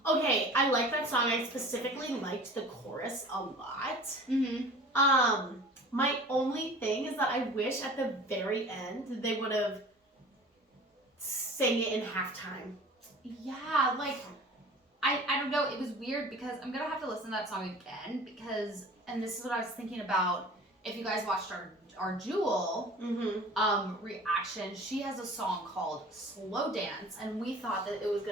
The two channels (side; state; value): both; normal; correlation 0.43